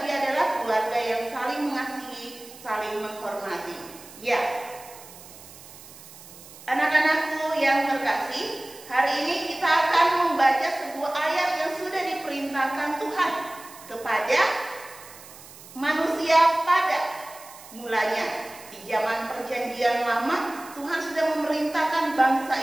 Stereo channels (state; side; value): noise; right; hiss, 18 dB below the sound